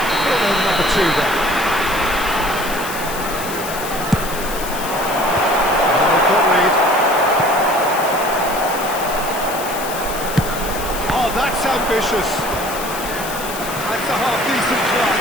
Number 2 then. Oh, that's ambitious. That's a half-decent try.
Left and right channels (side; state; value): left; noise; hiss, 9 dB below the sound